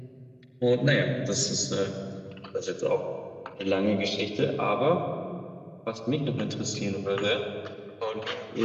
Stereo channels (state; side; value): identical; both; correlation 1.00